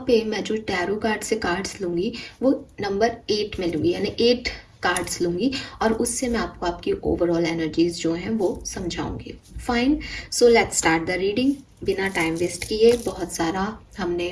पे मैं जो टैरो कार्ड से कार्ड्स लूँगी वो नंबर 8 में लूँगी, यानी 8 कार्ड्स लूँगी, और उससे मैं आपको आपकी ओवरऑल एनर्जीज जो हैं वो समझाऊंगी। Fine, so let's start the reading. बिना टाइम वेस्ट किए, बहुत सारा हमने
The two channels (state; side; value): identical; both; correlation 1.00